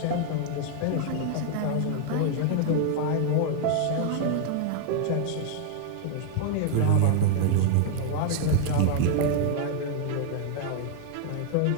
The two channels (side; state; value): both; different; correlation 0.00